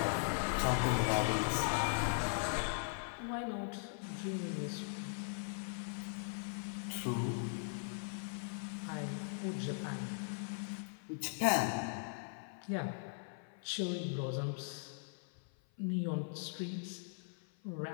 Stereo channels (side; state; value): right; silent; 51 dB below the other